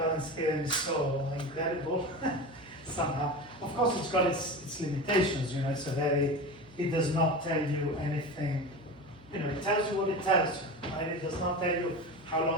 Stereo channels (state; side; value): noise; right; hum, 25 dB below the sound